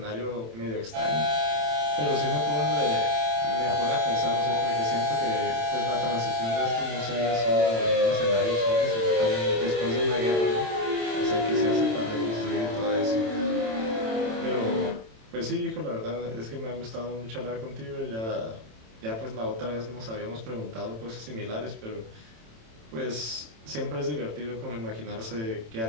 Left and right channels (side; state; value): left; late; 27 ms